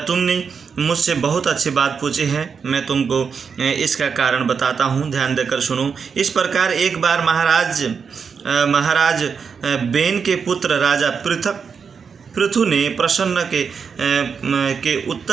तुमने मुझसे बहुत अच्छी बात पूछी है, मैं तुमको इसका कारण बताता हूँ, ध्यान देकर सुनो। इस प्रकार एक बार महाराज बेन के पुत्र राजा पृथु ने प्रसन्न के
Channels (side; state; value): left; quieter; 6.1 dB